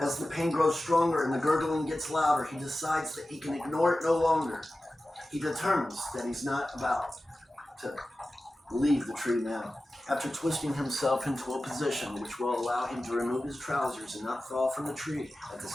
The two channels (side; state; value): both; normal; correlation 0.95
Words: the pain grows stronger and the gurgling gets louder, he decides that he can ignore it no longer. He determines that he's not about to leave the tree now. After twisting himself into a position which will allow him to remove his trousers and not fall from the tree at the